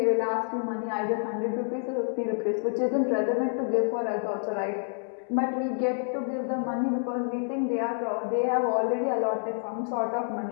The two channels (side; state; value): right; silent; digital silence